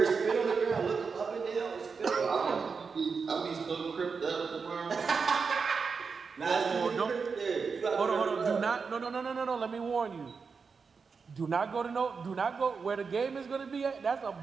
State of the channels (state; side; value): quieter; left; 5.3 dB